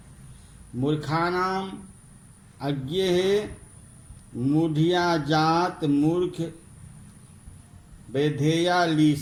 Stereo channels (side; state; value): both; identical; correlation 1.00